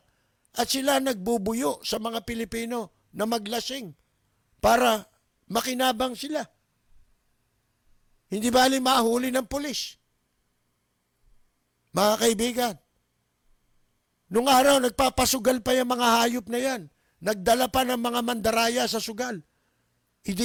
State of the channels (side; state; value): both; identical; correlation 1.00